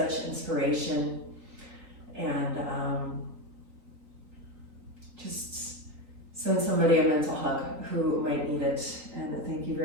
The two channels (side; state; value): left; late; 3.9 ms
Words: inspiration, and just send somebody a mental hug who might need it. And thank you